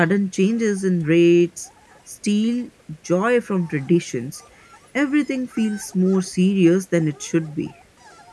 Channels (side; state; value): both; identical; correlation 1.00